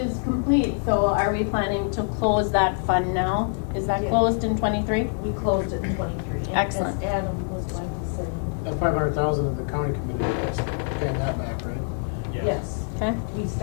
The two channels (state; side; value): silent; right; 62 dB below the other